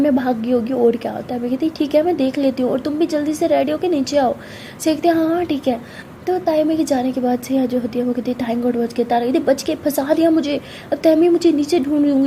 भाग गई होगी और क्या होता है। मैं कहती ठीक है मैं देख लेती हूँ, और तुम भी जल्दी से रेडी होकर नीचे आओ। कहती हाँ हाँ ठीक है। तो तायमी के जाने के बाद से जो होती है वो कहती है थैंक गॉड बच के, तारा कहती बच के, फंसा दिया मुझे, अब तैमी मुझे नीचे ढूंढ रही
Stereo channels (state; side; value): identical; both; correlation 1.00